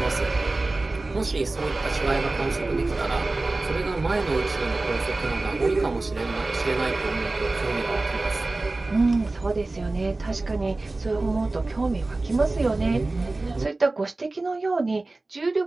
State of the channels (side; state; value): left; quieter; 3.2 dB